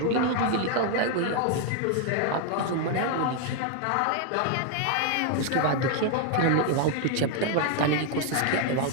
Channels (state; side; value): different; both; correlation 0.00